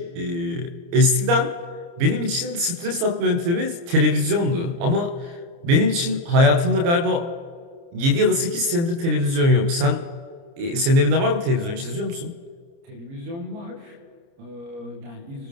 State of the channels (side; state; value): left; late; 29 ms